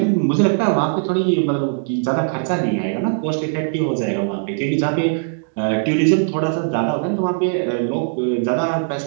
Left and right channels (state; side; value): silent; left; digital silence